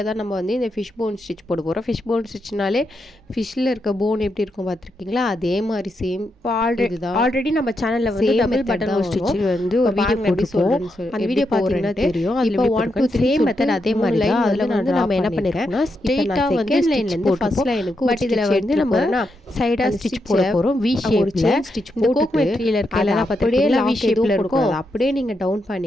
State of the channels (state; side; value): normal; both; correlation 0.83